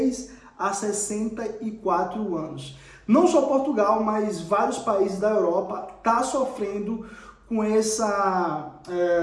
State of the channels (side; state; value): both; identical; correlation 1.00